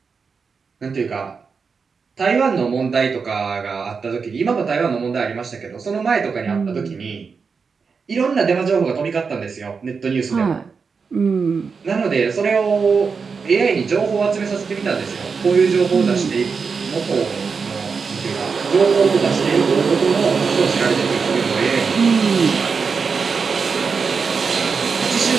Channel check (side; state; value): left; quieter; 5.3 dB